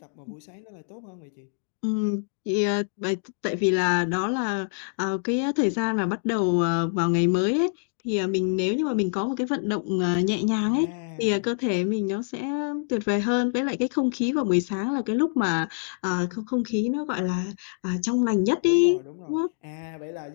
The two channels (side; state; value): right; silent; digital silence